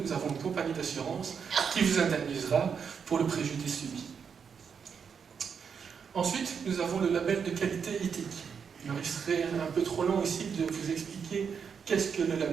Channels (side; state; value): left; quieter; 6.6 dB